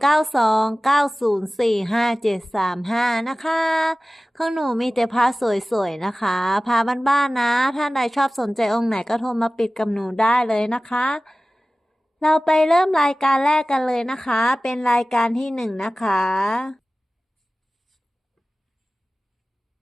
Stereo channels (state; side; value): normal; both; correlation 0.97